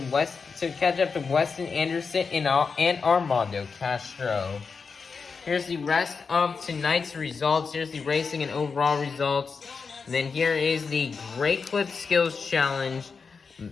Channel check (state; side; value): quieter; right; 5.2 dB